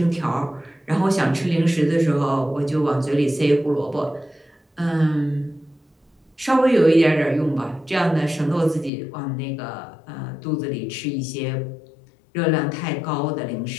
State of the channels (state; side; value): drops out; right; at 8.9 s